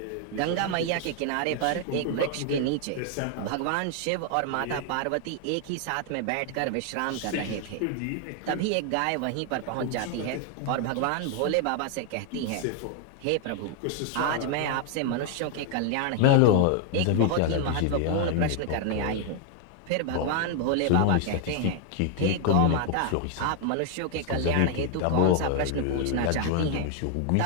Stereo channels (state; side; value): different; both; correlation 0.00